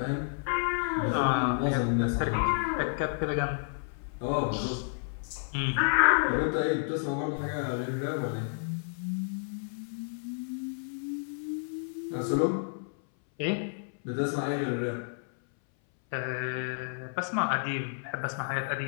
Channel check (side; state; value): right; silent; 57 dB below the other